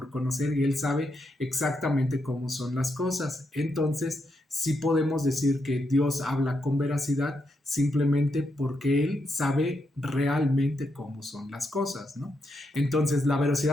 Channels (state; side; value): normal; both; correlation 0.82